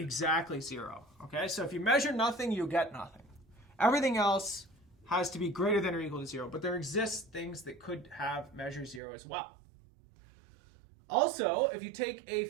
0. Okay, so if you measure nothing, you get nothing. Everything else has to be greater than or equal to 0, but there exist things that could have measure 0 as well. Also, if you take a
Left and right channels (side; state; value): left; drops out; at 9.0 s